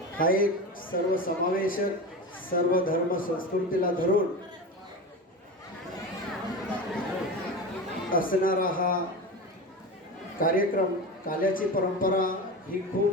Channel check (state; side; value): normal; both; correlation 0.26